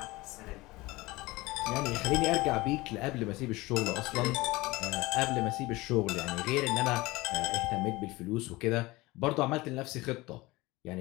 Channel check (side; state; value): right; quieter; 20.9 dB